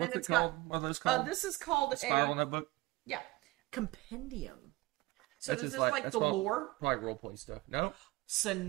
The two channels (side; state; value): left; quieter; 20.5 dB